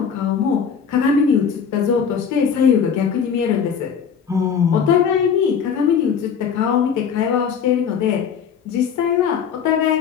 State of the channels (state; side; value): quieter; right; 7.1 dB